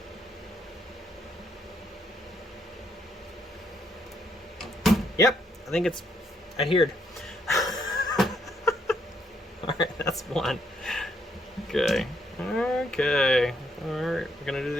Yep, I think it's adhered. Alright, that's one. Okay. Okay. Alright, we're gonna do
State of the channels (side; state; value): both; normal; correlation 0.72